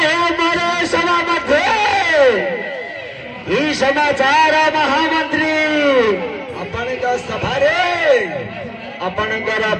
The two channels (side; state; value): both; identical; correlation 1.00